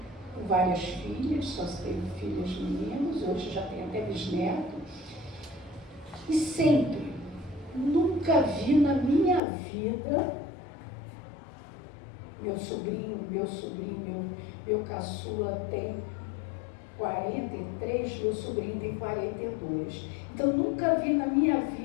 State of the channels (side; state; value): right; drops out; at 9.4 s